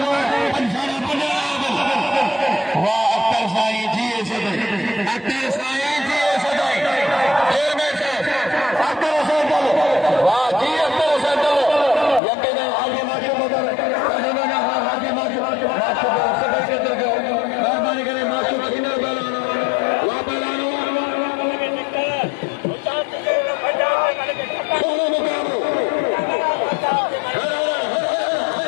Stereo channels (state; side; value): drops out; right; at 12.2 s